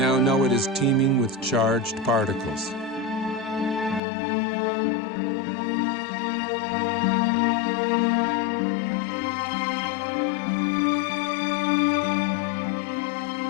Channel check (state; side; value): drops out; right; at 4.0 s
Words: know it is teeming with charged particles.